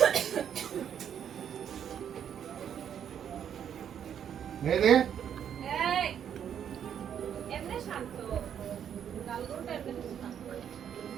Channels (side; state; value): left; quieter; 8.9 dB